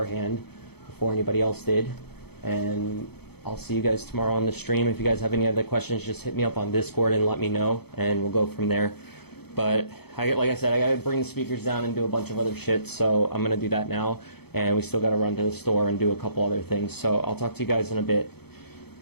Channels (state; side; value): late; right; 0.97 ms